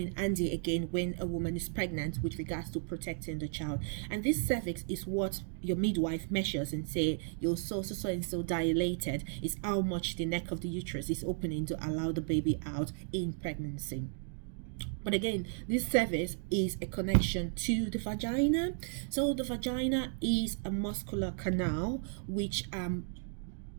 handy again when a woman is pregnant with regards to protecting the child. And this cervix is what your midwife measures and say you're so and so dilated is how much the neck of the uterus is opening to allow the baby out in pregnancy. But again, this cervix is a connection to the vagina. So the vagina is a muscular canal which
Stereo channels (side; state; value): left; silent; 55 dB below the other